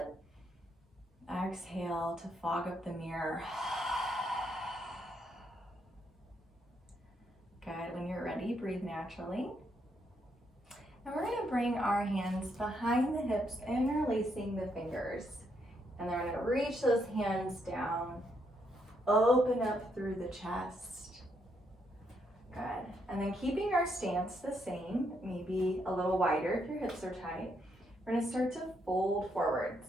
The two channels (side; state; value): both; normal; correlation 0.76